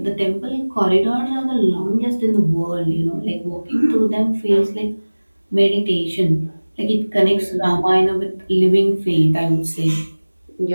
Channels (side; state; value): both; inverted; correlation -1.00